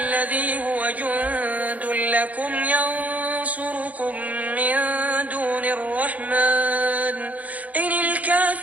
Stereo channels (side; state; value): left; late; 0.074 ms